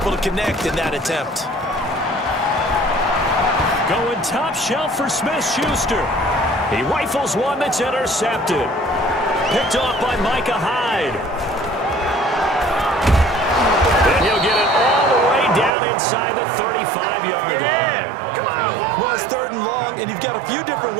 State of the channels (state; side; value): drops out; left; at 15.7 s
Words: to connect in that attempt. Going top shelf for Smith-Schuster. He rifles one that's intercepted. Picked off by Micah Hyde. And he'll get it all the way down inside the 35-yard line. Well, it's third and long, and you've got a few different